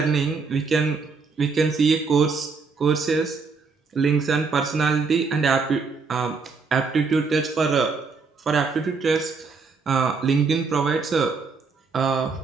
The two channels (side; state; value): left; quieter; 4.7 dB